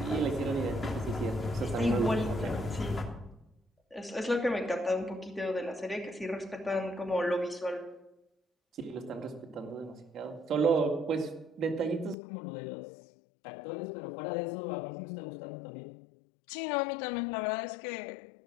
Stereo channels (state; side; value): drops out; right; at 12.2 s